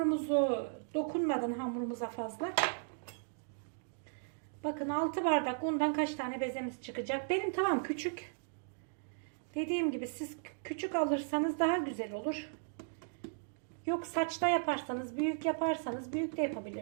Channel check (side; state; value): left; silent; digital silence